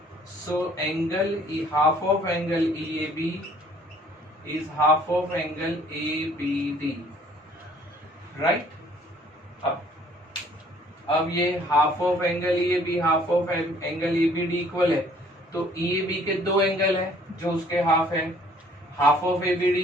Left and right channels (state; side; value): normal; both; correlation 0.58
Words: so angle half of angle EAB is half of angle ABD, right. अब ये half of angle EAB half of angle ABD equal है, तो EAB के दो angle है जो उसके हाफ है, हाफ ऑफ